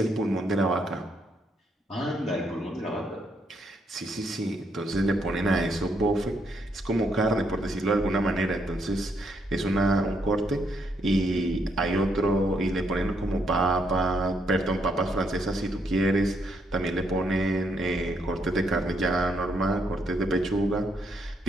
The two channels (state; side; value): normal; both; correlation 0.75